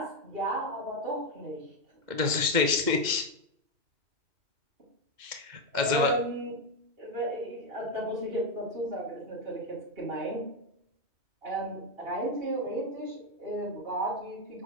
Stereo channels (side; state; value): left; late; 2.1 ms